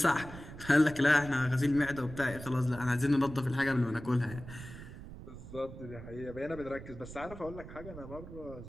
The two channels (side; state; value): right; noise; rumble, 13 dB below the sound